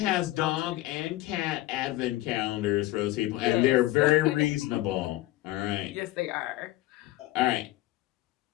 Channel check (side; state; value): right; quieter; 17.0 dB